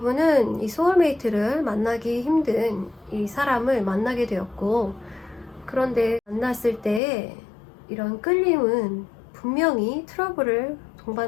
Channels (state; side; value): drops out; right; at 7.0 s